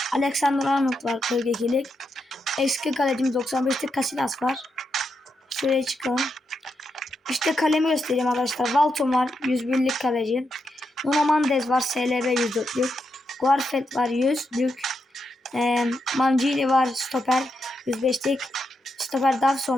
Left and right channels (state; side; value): normal; both; correlation 0.84